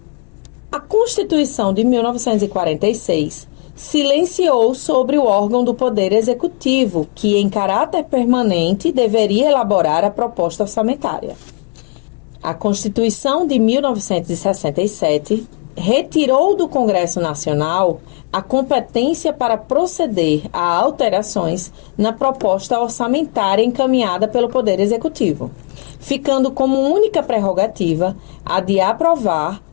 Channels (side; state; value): right; quieter; 33.2 dB